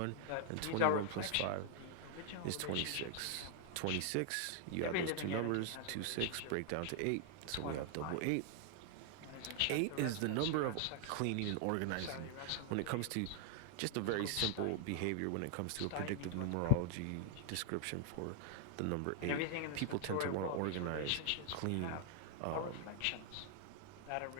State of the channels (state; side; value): different; both; correlation 0.00